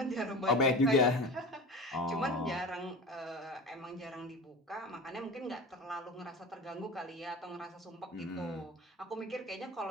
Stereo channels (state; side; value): normal; both; correlation 0.33